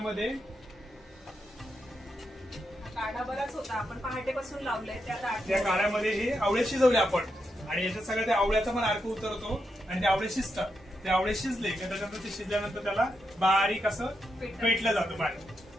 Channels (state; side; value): normal; both; correlation 0.84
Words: काढा बराच होता, आपण पहाटेपासून लावलंय त्या काढ्यामध्ये हे आवळे शिजवले आपण, आणि याच्यात सगळं त्या आवळ्याचा पण अर्क उतरतो आणि ते आवळे शिजतात. ते आवळे शिजले की त्याच्यानंतर ते शिजल्यानंतर त्याला बारीक असं पेटलं जातं